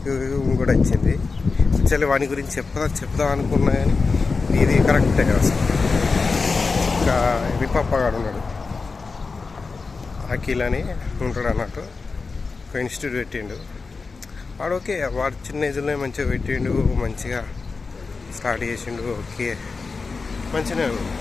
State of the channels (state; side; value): quieter; right; 4.3 dB